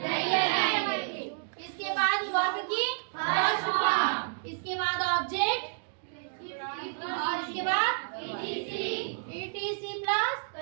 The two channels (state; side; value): silent; left; digital silence